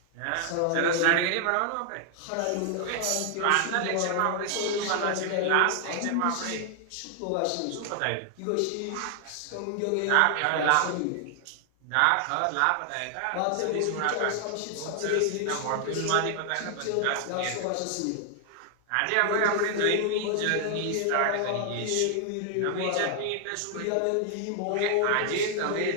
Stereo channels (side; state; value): both; different; correlation 0.00